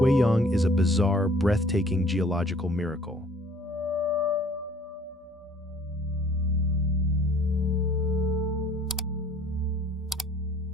is a bizarre, breathtaking geological miracle.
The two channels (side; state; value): both; normal; correlation 0.55